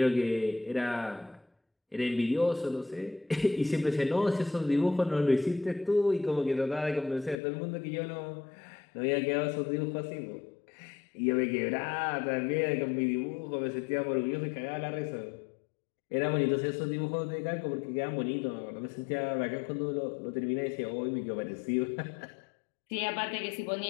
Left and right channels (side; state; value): right; drops out; at 7.4 s